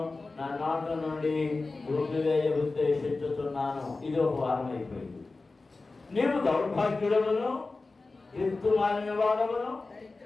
నా నోట నుండి ఊపివేయ ఉద్దేశించుతున్నాను. ఇది ఒక వారం అయిపోయింది. నీవు దౌర్భాగ్యుడవును, దిక్కుమాలిన వాడవును,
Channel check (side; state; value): right; quieter; 3.6 dB